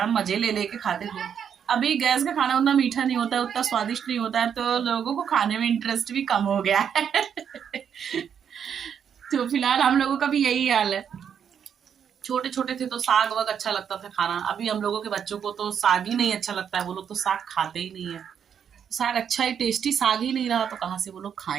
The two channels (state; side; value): quieter; left; 8.0 dB